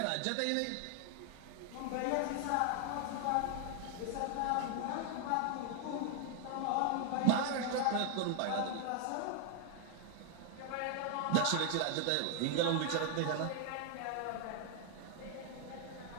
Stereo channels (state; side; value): different; both; correlation 0.00